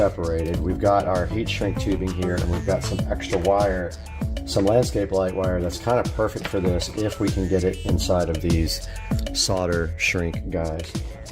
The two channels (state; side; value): identical; both; correlation 1.00